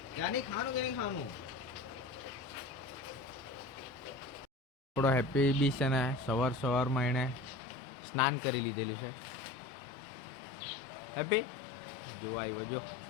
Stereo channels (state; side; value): drops out; right; at 7.6 s